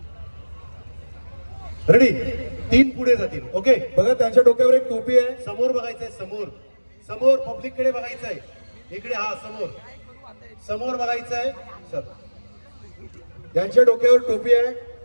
रेडी? 3 पुढे जातील. ओके बघा त्यांच्या डोक्यावर एक टोपी आहे. समोर बघायचंय, समोर समोर पब्लिक कडे बघायचंय. इकडे हा समोर समोर बघायचंय सर. त्यांच्या डोक्यावर टोपी आहे,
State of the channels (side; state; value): both; inverted; correlation -1.00